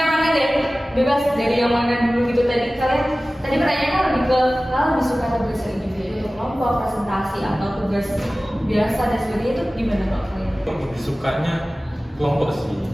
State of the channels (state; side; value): normal; both; correlation 0.97